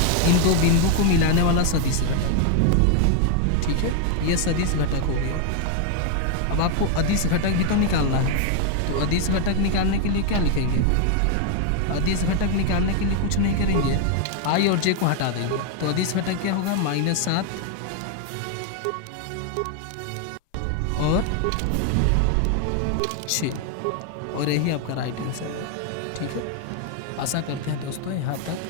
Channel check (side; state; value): both; different; correlation 0.00